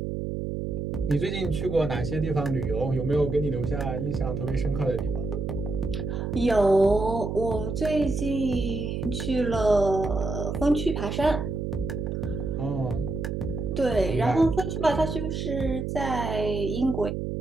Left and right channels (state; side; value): noise; right; hum, 3 dB below the sound